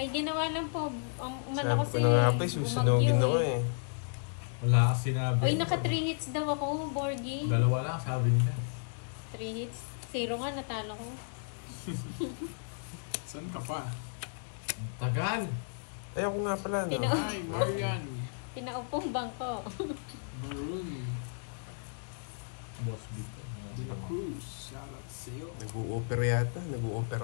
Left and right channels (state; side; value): silent; right; digital silence